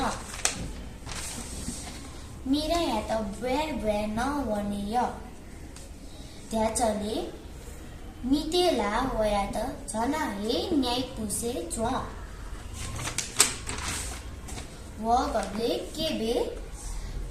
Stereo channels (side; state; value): both; identical; correlation 1.00